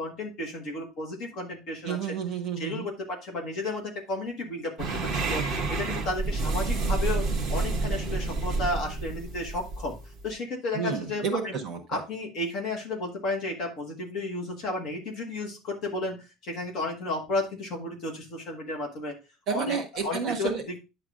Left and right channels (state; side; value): normal; both; correlation 0.38